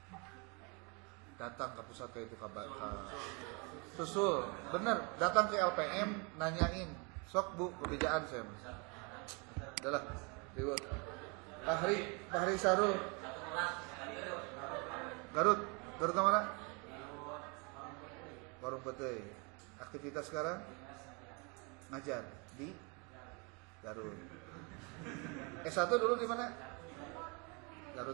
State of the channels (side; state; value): left; quieter; 31.9 dB